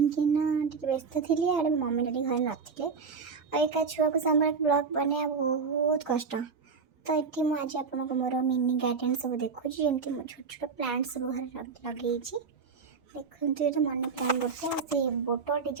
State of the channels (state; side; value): quieter; left; 5.2 dB